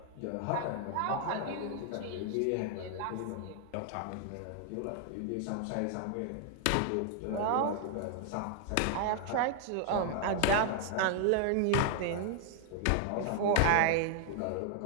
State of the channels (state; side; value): different; both; correlation 0.00